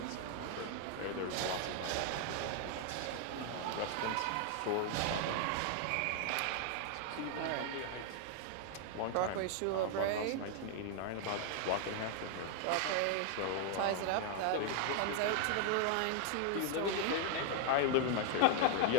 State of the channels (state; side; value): different; both; correlation 0.00